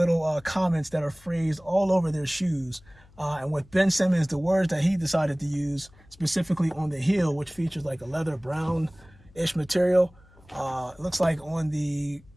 comments that are phrased all over their shoes. And with Ben Simmons, the words that he decided to use specifically on the heel, which features like a leather brown-ish material. It looks like on the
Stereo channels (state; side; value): noise; left; hum, 27 dB below the sound